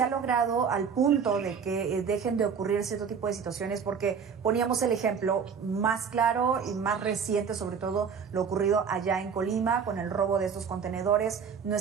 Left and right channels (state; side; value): quieter; left; 6.5 dB